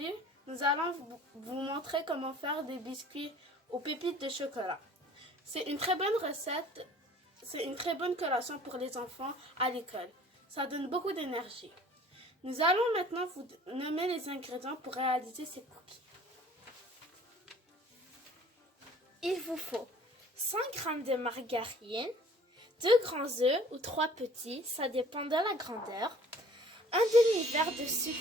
nous allons vous montrer comment faire des biscuits aux pépites de chocolat. C'est une très bonne recette, c'est une très bonne collation pour les enfants à l'école. Ça donne beaucoup d'énergie. Nous allons maintenant vous nommer les ingrédients pour réaliser ces cookies. Il vous faut 100 g de margarine, 2 grands œufs ou 3 petits, ça dépend de la grandeur, un demi-verre de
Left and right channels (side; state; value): both; normal; correlation 0.51